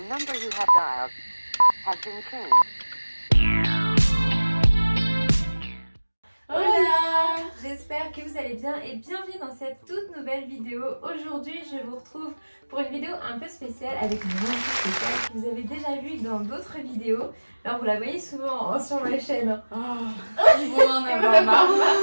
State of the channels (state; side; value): inverted; both; correlation -1.00